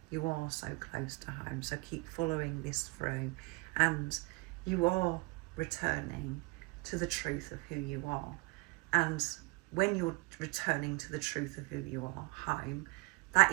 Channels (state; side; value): quieter; left; 26.4 dB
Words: you are so close to home. So keep following this through, and you are returning to the truth of who you are. And when you're returning to the truth of who you are, home, that